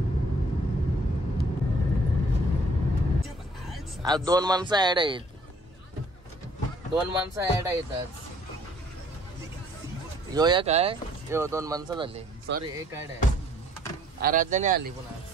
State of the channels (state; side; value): normal; both; correlation 0.60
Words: आज 2 माणसं ऍड आहेत. 2 माणसं ऍड आहेत आज. यो एक आहे, यो 2 माणसं झाली. सॉरी, एक ऍड आहे. आराध्याने आली पुन्हा.